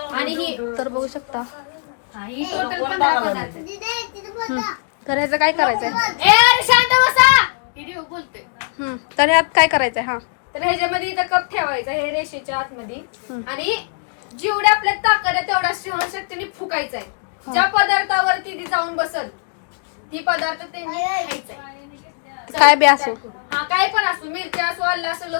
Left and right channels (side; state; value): right; silent; 66 dB below the other